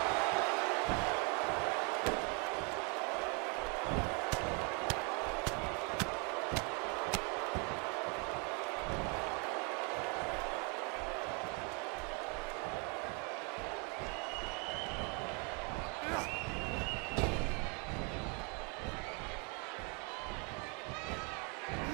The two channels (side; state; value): left; quieter; 34.1 dB